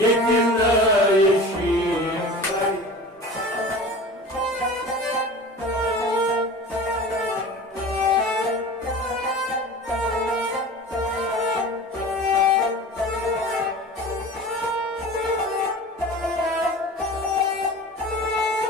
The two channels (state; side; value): normal; both; correlation 0.37